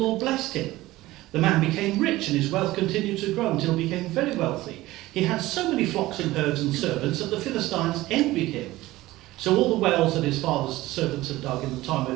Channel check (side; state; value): left; quieter; 17.6 dB